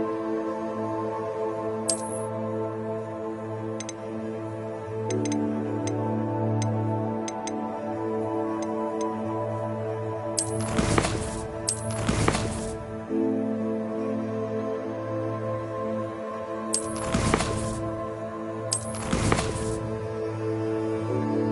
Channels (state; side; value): identical; both; correlation 1.00